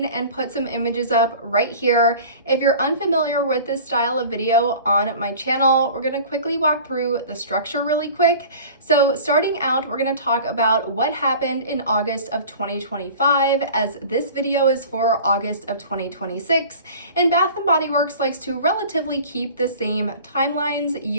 and put some images up right here. If you're unfamiliar with this style of video on my channel, we're gonna quickly walk through the structure really quick. So starting out, we're gonna talk about what happened in August of 2025, as this video is for August of 2026. And Bath & Body Works likes to relatively keep the same timelines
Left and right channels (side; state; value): both; inverted; correlation -0.42